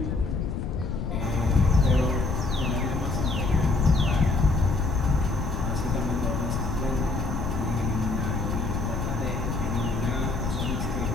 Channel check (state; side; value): noise; left; rumble, 2 dB below the sound